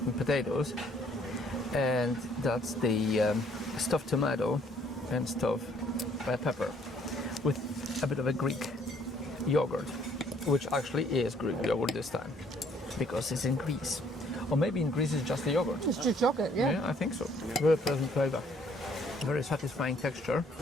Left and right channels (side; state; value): both; normal; correlation 0.63